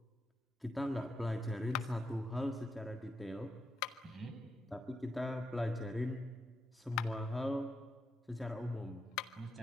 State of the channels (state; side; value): normal; both; correlation 0.84